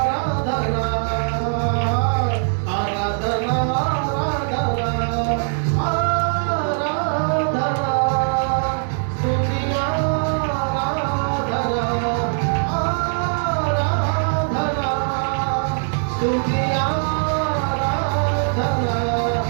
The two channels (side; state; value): left; silent; 65 dB below the other